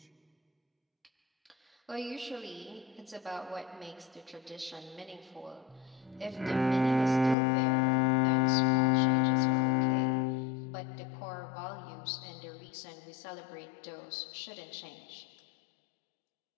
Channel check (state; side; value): drops out; right; at 7.4 s